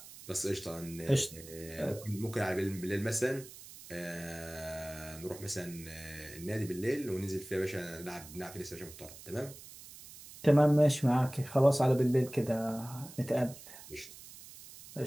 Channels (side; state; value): right; noise; hiss, 17 dB below the sound